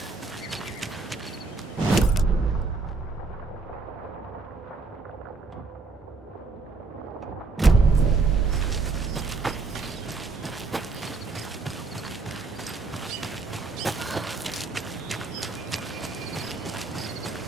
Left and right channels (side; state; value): left; quieter; 3.9 dB